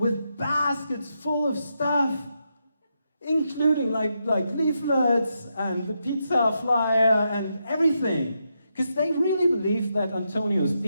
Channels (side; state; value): both; inverted; correlation -0.83